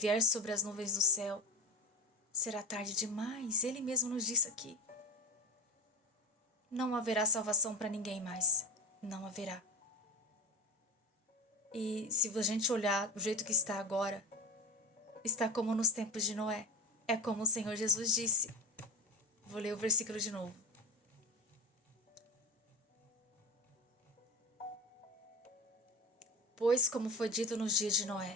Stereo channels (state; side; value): normal; both; correlation 0.19